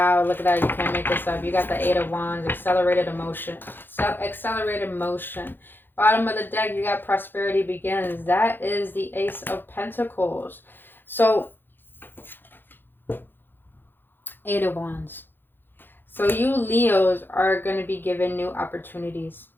look at that. You can't make this up. You got the Eight of Wands, accelerated emotion. Accelerated motion. Bottom of the deck, you got prosperity begins. That is the Ace of Pentacles. So, Eight of Wands. So you Leos are going to be given new opportunities.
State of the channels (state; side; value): late; right; 0.098 ms